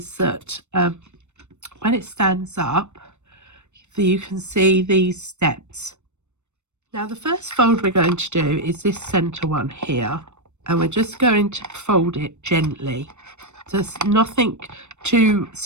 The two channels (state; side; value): late; left; 0.83 ms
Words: that when it stands up, you can see these steps. Now the first fold we're going to do is this center one here, and we're just going to fold it gently. Just nothing too